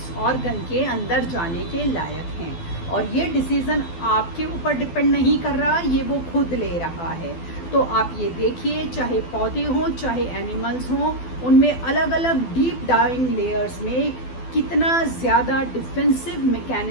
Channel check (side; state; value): right; late; 12 ms